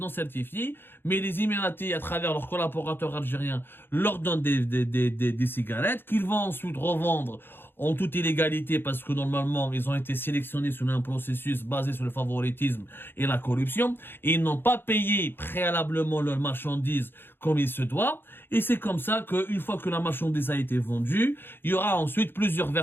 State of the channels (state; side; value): late; right; 0.10 ms